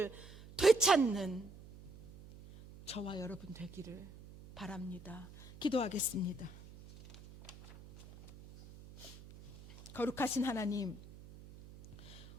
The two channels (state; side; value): noise; right; hum, 18 dB below the sound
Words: 되찾는 저와 여러분 되기를 바랍니다. 기도하겠습니다. 거룩하신 하나님,